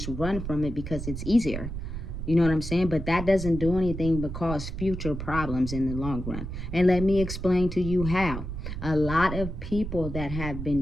run from it because it's easier. You know what I'm saying? But that doesn't do anything but cause future problems in the long run. And let me explain to you how. A lot of people that have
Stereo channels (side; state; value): right; noise; rumble, 6 dB below the sound